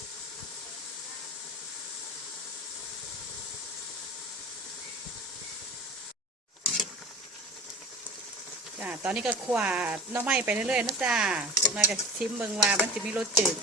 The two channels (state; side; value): normal; both; correlation 0.36